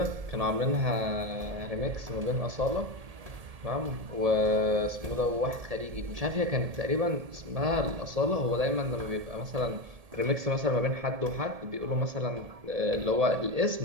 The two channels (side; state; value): left; late; 1.8 ms